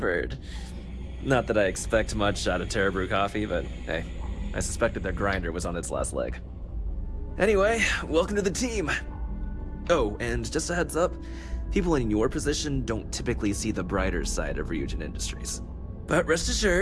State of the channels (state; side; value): identical; both; correlation 1.00